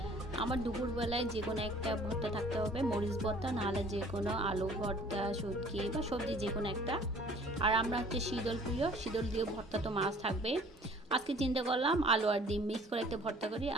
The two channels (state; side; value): normal; both; correlation 0.52